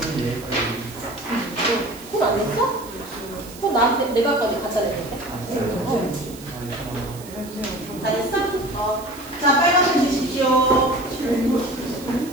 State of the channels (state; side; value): noise; right; hiss, 17 dB below the sound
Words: 내가 거기 갖다 냈는데. 다 됐어? 자, 빨간색 드십시오.